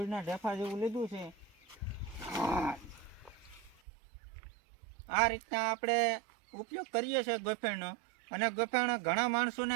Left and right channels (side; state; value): left; drops out; at 3.8 s